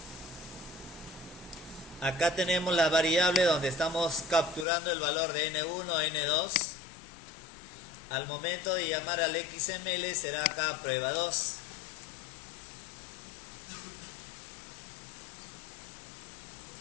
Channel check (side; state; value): right; drops out; at 4.7 s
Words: Acá tenemos la variable donde estamos capturando el valor de N1, N2. Al momento de llamar al XML será acá prueba 2.